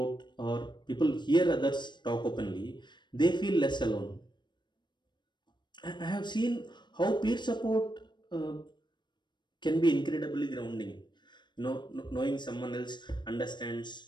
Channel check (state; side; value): late; right; 0.22 ms